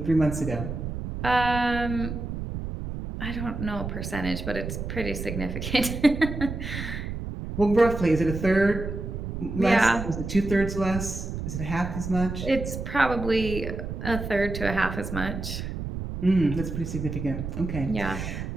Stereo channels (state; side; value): noise; right; rumble, 6 dB below the sound